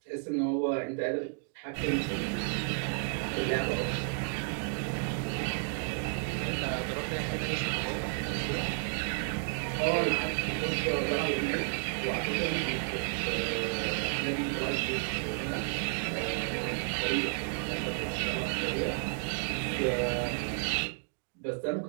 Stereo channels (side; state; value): left; silent; 56 dB below the other